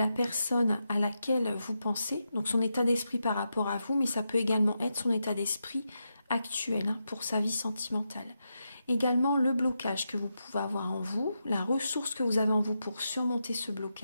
personne à laquelle vous pensez, donc son état d'esprit par rapport à vous, mais ça peut également être son état d'esprit actuel pour sa vie sentimentale. Également le blocage que vous pouvez avoir en vous, la ressource que vous avez en vous pour surmonter ce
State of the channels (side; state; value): both; inverted; correlation -0.86